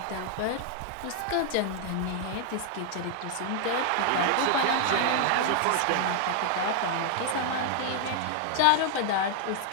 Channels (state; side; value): different; both; correlation 0.00